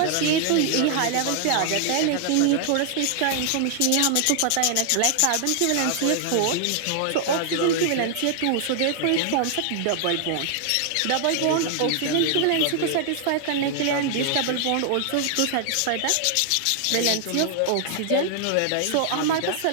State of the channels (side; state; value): both; different; correlation 0.00